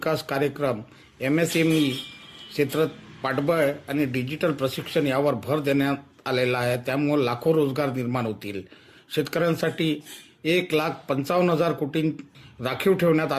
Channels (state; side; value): identical; both; correlation 1.00